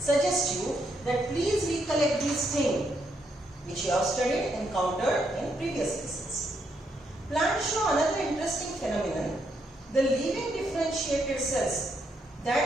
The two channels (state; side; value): normal; both; correlation 0.77